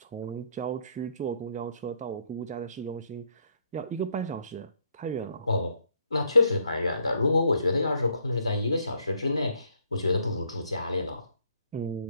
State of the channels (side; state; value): both; inverted; correlation -0.70